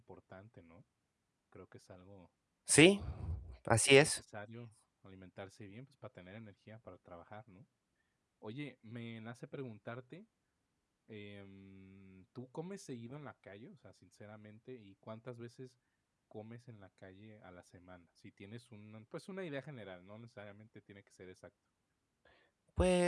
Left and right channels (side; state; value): both; identical; correlation 1.00